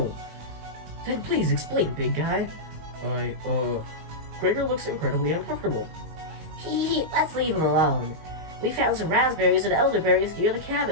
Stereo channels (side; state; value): left; late; 19 ms